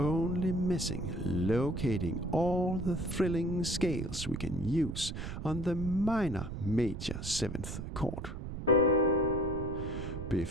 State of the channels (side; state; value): right; noise; rumble, 7 dB below the sound